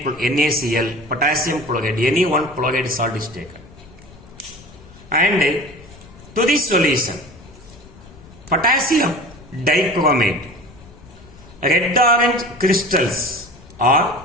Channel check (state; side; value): noise; left; rumble, 21 dB below the sound